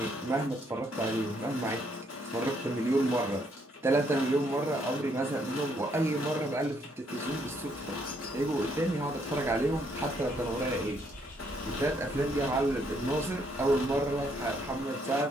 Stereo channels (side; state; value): both; normal; correlation 0.71